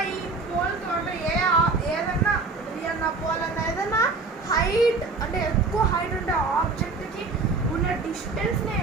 ఈ పోల్తో అంటే ఏదన్నా అన్న పోల్ అన్న ఏదన్నా హైట్ అంటే ఎక్కువ హైట్ ఉండే ఆబ్జెక్ట్కి ఉన్న డిస్టెన్స్నే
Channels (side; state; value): left; quieter; 4.0 dB